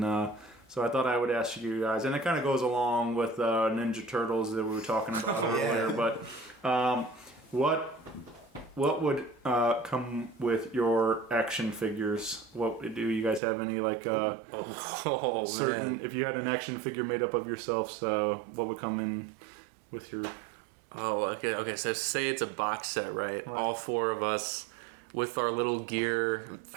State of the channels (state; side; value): drops out; left; at 13.4 s